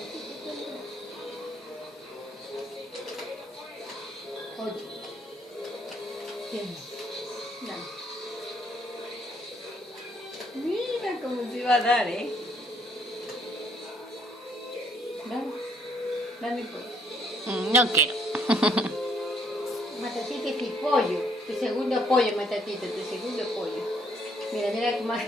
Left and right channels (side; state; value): both; normal; correlation 0.67